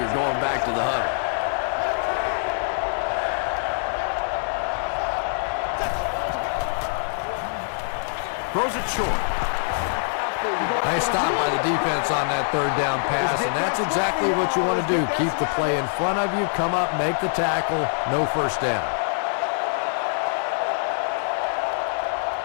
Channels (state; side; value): silent; right; digital silence